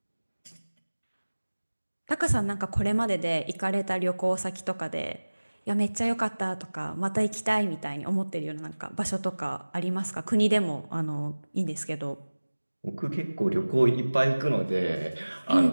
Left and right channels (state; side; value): inverted; both; correlation -1.00